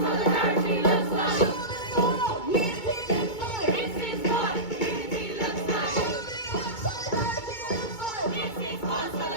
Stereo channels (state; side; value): late; right; 2.2 ms